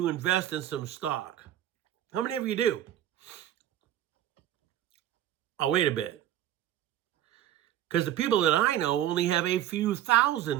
invest in some stock? How many of you do? Oh, wait a bit. Because the people that I know only have a few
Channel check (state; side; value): quieter; left; 12.0 dB